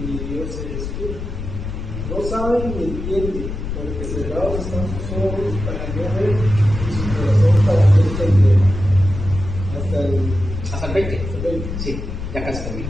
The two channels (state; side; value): noise; left; rumble, 6 dB below the sound